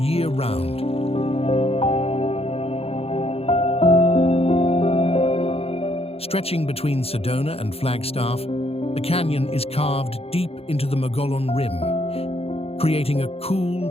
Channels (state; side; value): late; right; 0.29 ms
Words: Stretching between Sedona and Flagstaff, the canyon is carved deep into the Mogollon Rim, creating a